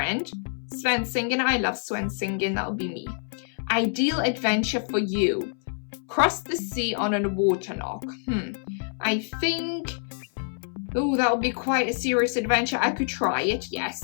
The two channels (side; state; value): right; silent; 61 dB below the other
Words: Sven singing. I love Sven singing. That will be me. Ideal adventure for you. Cross the sea on a water lock. I think... Oh, that would be quite a serious adventure. I could try it,